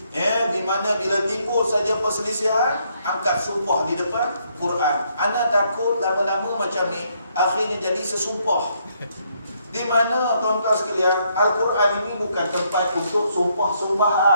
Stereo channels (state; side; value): inverted; both; correlation -0.72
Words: di mana bila timbul saja perselisihan, angkat sumpah di depan Quran. Ana takut lama-lama macam ni akhirnya jadi sesumpah, di mana tuan-tuan sekalian Al-Quran ini bukan tempat untuk